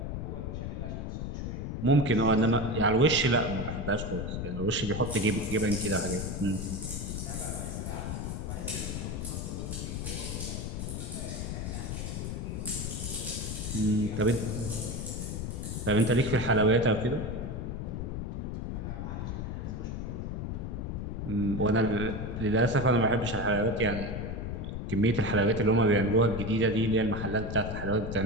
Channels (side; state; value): left; noise; rumble, 4 dB below the sound